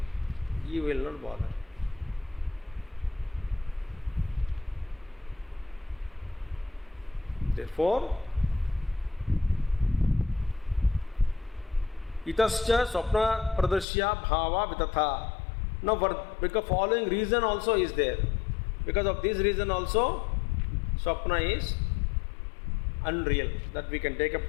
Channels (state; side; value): drops out; right; at 13.9 s